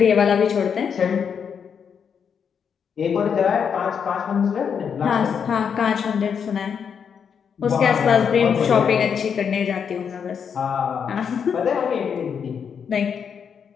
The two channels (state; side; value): quieter; right; 7.1 dB